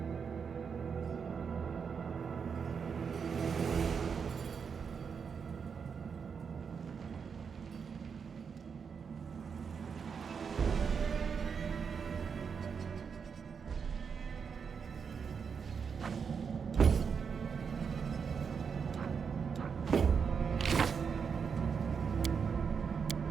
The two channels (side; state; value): left; quieter; 6.2 dB